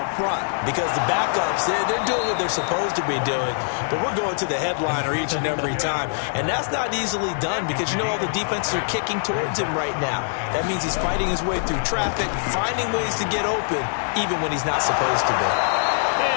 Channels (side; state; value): right; silent; digital silence